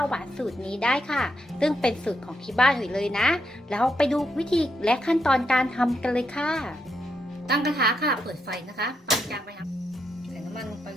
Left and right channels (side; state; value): both; normal; correlation 0.81